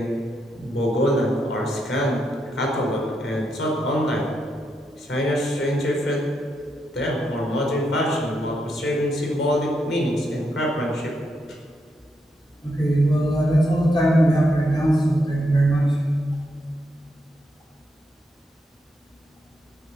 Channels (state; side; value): normal; both; correlation 0.81